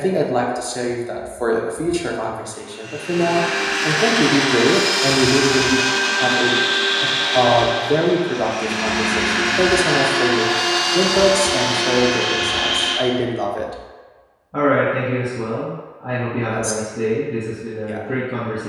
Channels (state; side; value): identical; both; correlation 1.00